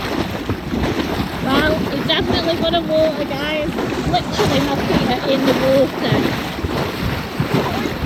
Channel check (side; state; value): both; identical; correlation 1.00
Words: Well, it's definitely got a water, guys. Literally, my feet are in the water.